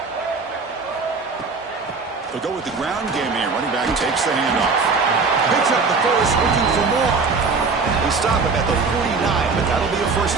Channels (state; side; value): quieter; left; 4.5 dB